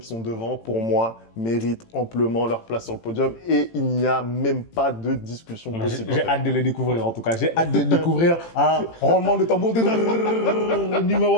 sont devant, pour moi, méritent amplement leur place sur le podium et il n'y a même pas de discussion possible. J'ai hâte de les découvrir, en tout cas. J'ai hâte de découvrir un roulement de tambour.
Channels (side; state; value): right; late; 18 ms